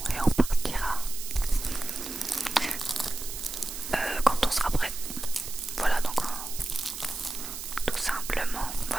et on partira quand on sera prêt. Voilà, donc tout simplement,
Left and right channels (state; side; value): noise; right; hiss, 8 dB below the sound